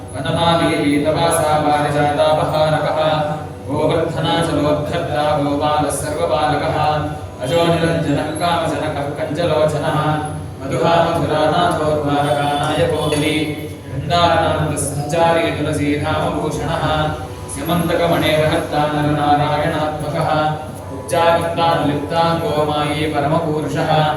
वनमालीपीतवासा पारिजातापहारकः गोवर्धनाचलोद्धर्ता गोपालः सर्वपालकः अजो निरञ्जनः कामजनकः कञ्जलोचनः मधुहा मधुरानाथोद्वारकानायको बली वृन्दारनान्दसञ्चारी तुलसीधामभूषणः स्यमन्तकमणेर्हर्ता नरनारायणात्मकः उच्चाकृतानुलिप्ताङ्गो मायी परमपूरुषः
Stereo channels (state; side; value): identical; both; correlation 1.00